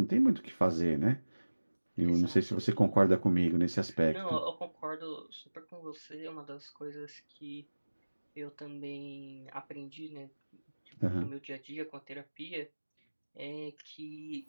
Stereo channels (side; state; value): both; inverted; correlation -1.00